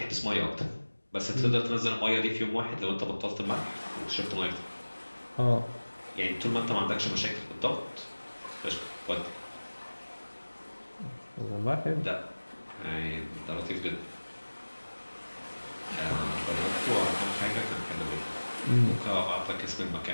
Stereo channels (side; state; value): both; inverted; correlation -1.00